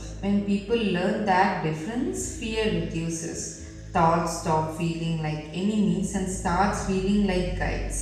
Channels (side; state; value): both; identical; correlation 1.00